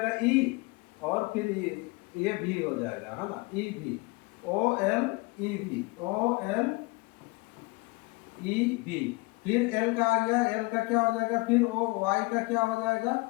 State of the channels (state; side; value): quieter; right; 25.7 dB